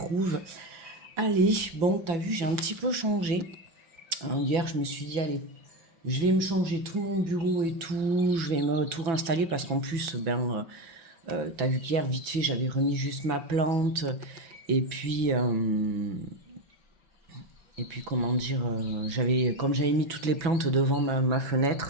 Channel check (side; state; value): left; late; 6.0 ms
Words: Allez, bon, t'as vu, j'ai un petit peu changé. Hier, je me suis dit, allez, je vais me changer tout mon bureau et tout, je vais me tout réinstaller parce qu'en plus, t'as vu qu'hier, vite fait, j'avais remis juste ma plante. Et puis, comment dire, comme j'avais mis toutes les plantes devant ma